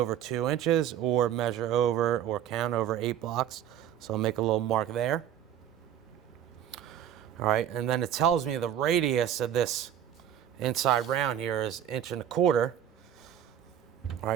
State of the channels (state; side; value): quieter; left; 10.3 dB